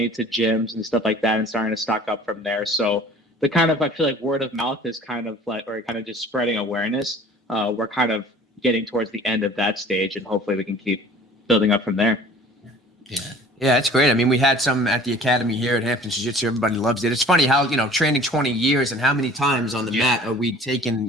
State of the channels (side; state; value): both; normal; correlation 0.47